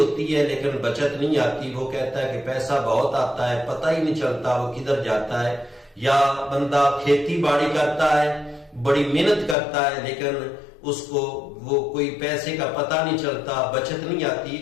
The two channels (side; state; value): right; drops out; at 9.6 s